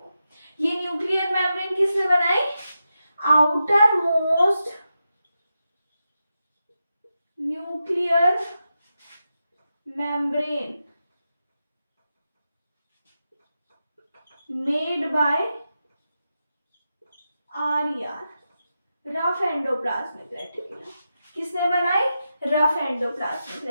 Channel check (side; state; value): both; inverted; correlation -0.89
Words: ये न्यूक्लियर मेम्ब्रेन किसने बनाई? Outer most nuclear membrane made by rough endoplasmic reticulum. किसने बनाई? रफ एंडोप्लाज्मिक